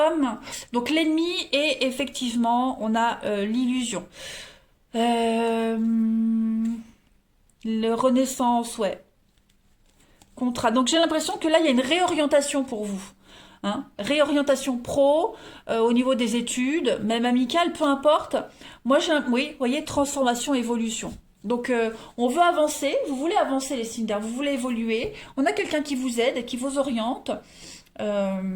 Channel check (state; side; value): identical; both; correlation 1.00